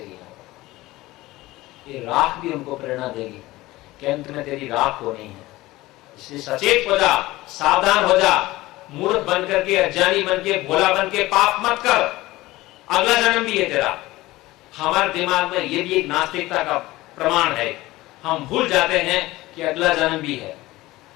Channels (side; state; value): right; quieter; 18.5 dB